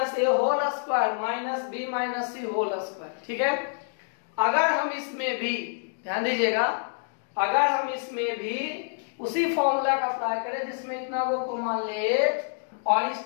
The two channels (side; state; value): right; silent; digital silence